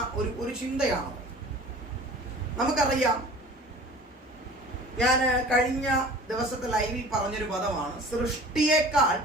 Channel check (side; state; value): both; normal; correlation 0.43